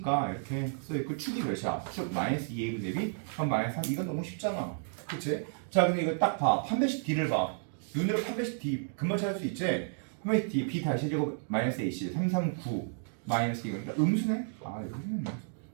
이렇게 써있고 축이 몇이야? 축 마이너스 2a 분의 b 그럼 마이너스 3. 이건 너무 쉽잖아. 그치? 자, 근데 이거 딱 봐. 판별식 d를 봐. 눈으로 판별식 d 금방 찾을 수 있지? 판별식 d b 다시 제곱 마이너스 ac 339 마이너스 2. 그러니까 음수네? 아, 음수네.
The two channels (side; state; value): left; silent; digital silence